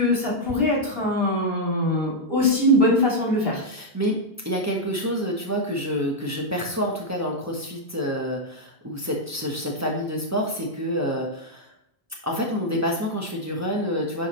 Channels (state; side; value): normal; both; correlation -0.03